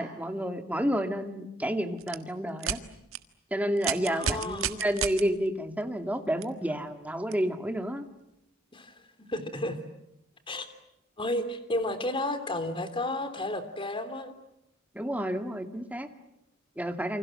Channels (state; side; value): normal; both; correlation 0.68